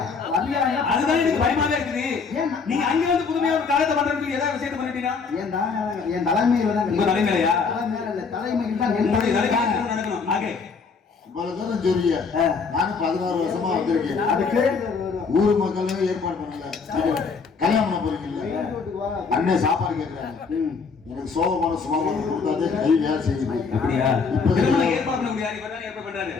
அதுதான் எனக்கு பயமாவே இருக்குது. நீங்க அங்க வந்து புதுமையா ஒரு காலத்தை பண்றதுக்கு ஏதாவது விஷயத்தை பண்ணிட்டீங்க. என் தலைமையில தான். உங்க தலைமையிலயா? தலைமையில் தான் நடக்கணும். ஆகே இவ்வளவு தூரம் சொல்லிய நானும் 16 வருஷமா வந்திருக்கேன். அதுக்கு ஊர் மக்களும் ஏற்பாடு பண்ணல. கல்யாணம் பண்ண போறீங்கல்ல, அண்ணன் சாப்பாடு கேட்கிறாங்க. எனக்கு சோகமான சுமாமான கொடுத்தாதே கை வேலை செய்யுது. அப்படியா? இப்ப ஏற்பாடு பண்ண முடியாது. இப்பதான் ஏற்பாடு பண்றாரு.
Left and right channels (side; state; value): right; quieter; 5.1 dB